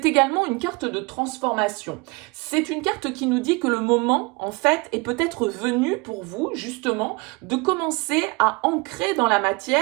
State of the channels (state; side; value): quieter; left; 27.5 dB